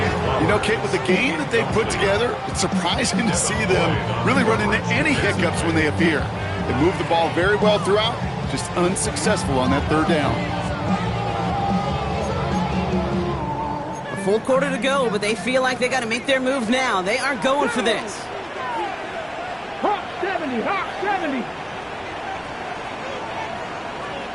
You know, Kate, with the game that they put together, it's surprising to see them really run into any hiccups when they appear. They moved the ball very well throughout, just unsuccessful on that 3rd down. A full quarter to go, but they feel like they got to make their move now. They are going for this. Hawk 70. Hawk 70.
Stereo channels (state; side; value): identical; both; correlation 1.00